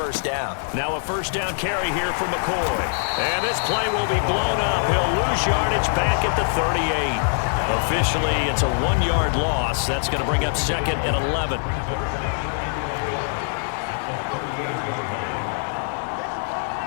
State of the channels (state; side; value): silent; right; 63 dB below the other